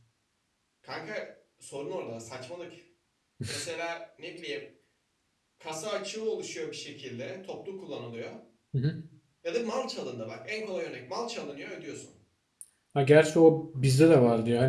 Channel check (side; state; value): both; identical; correlation 1.00